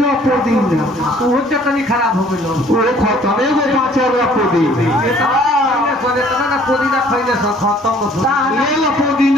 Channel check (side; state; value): both; normal; correlation 0.57